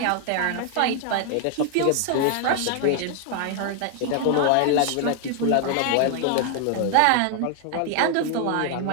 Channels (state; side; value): different; both; correlation 0.00